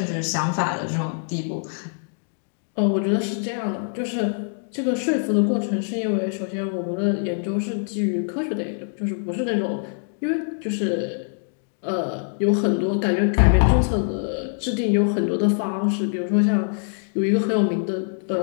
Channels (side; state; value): right; silent; digital silence